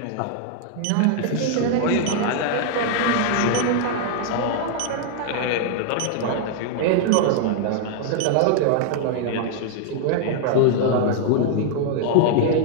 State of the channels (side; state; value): both; different; correlation -0.01